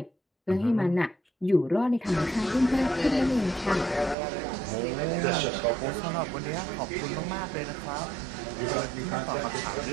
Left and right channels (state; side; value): drops out; left; at 4.2 s